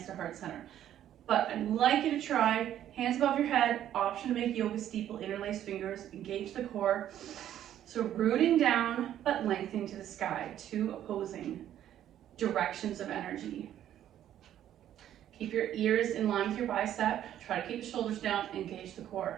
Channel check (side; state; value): left; quieter; 11.3 dB